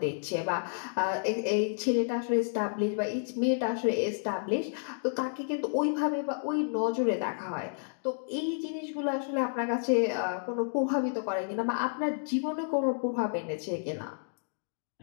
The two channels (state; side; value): silent; right; digital silence